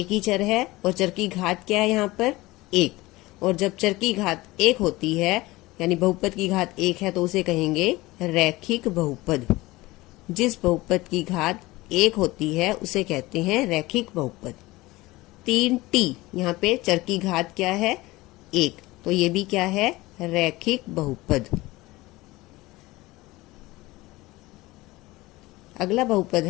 ही चर है और चर की घात क्या है यहाँ पर 1, और जब चर की घात 1 होती है यानी बहुपद की घात 1 है तो उसे कहेंगे रैखिक बहुपद। जिस बहुपद की घात 1 होती है उसे कहते हैं रैखिक बहुपद। 3t, यहाँ पे चर की घात क्या है 1, तो ये भी क्या है, रैखिक बहुपद। अगला बहुपद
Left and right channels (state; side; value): quieter; right; 20.0 dB